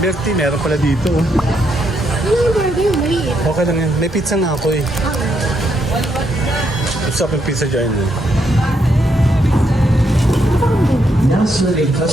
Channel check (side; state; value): both; normal; correlation 0.77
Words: Bertie, meron pala dito. Oh. talaga yung maliit. Okay lang yan. May pizza na ako eh. Gusto ko yung pizza dyan eh. Now serving